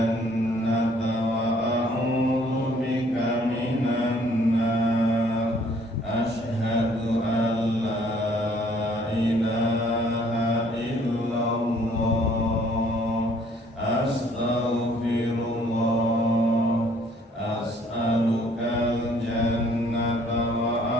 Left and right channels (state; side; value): normal; both; correlation 0.61